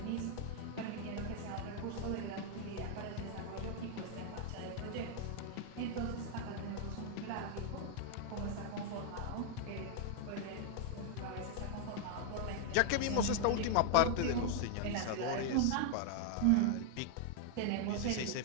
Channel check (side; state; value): both; different; correlation 0.00